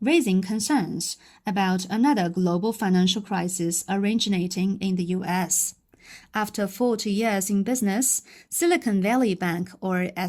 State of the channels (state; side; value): identical; both; correlation 1.00